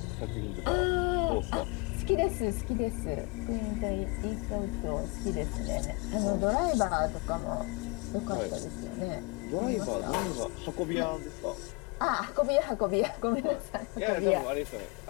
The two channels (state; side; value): quieter; right; 28.5 dB